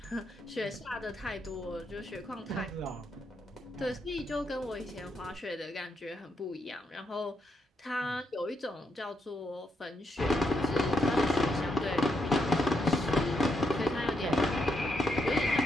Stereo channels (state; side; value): normal; both; correlation 0.79